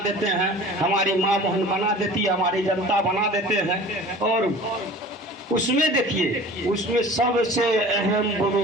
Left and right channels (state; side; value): normal; both; correlation 0.42